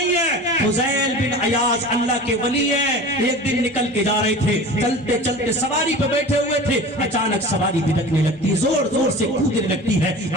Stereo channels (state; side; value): normal; both; correlation 0.36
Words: ہے. فضیل بن عیاض اللہ کے ولی ہیں, ایک دن نکل کے جا رہے تھے, چلتے چلتے سواری پہ بیٹھے ہوئے تھے, اچانک سواری بھٹکنے لگتی, زور زور سے کودنے لگتی ہے.